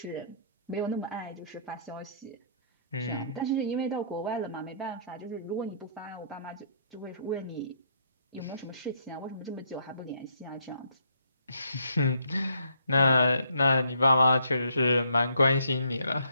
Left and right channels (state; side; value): inverted; both; correlation -0.68